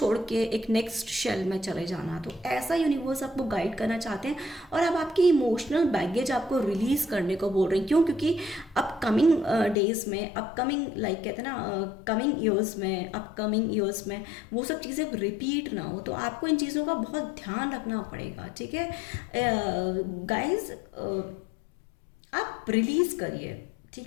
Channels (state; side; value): drops out; right; at 9.8 s